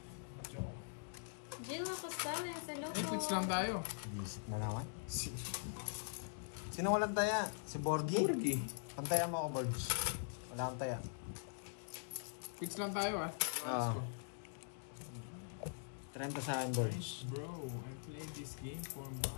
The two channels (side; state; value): right; silent; digital silence